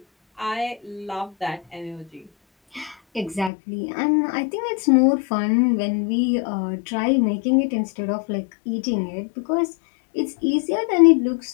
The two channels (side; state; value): right; drops out; at 3.5 s